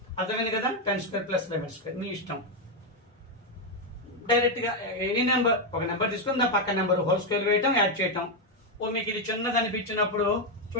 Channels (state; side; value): normal; both; correlation 0.04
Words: అర్థమైంది కదా? 10² + 11² మీ ఇష్టం. డైరెక్ట్ గా ఎనీ నెంబర్, ఒక నెంబర్ తీసుకుని దాని పక్క నెంబర్ హోల్ స్క్వేర్ వేయటం, యాడ్ చేయటం. మీకు ఇది చిన్నది అనిపించినప్పుడు